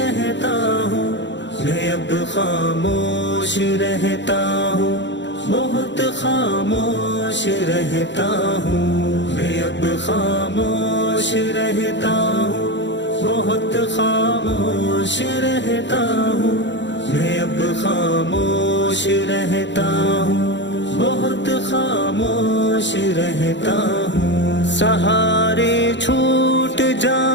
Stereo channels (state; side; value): late; right; 0.52 ms